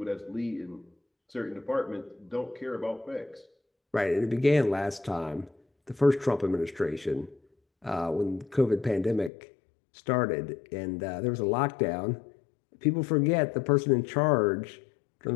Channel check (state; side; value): drops out; right; at 9.3 s